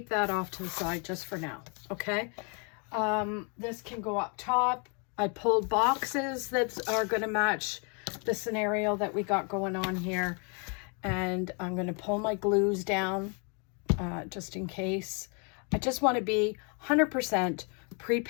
that off to the side just for now. Okay. This can go up top. I pulled boxes that are going to match the scenario that we got going on here. And I'm going to pull my glues down just in case. I just want to be 100%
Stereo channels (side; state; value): right; quieter; 36.2 dB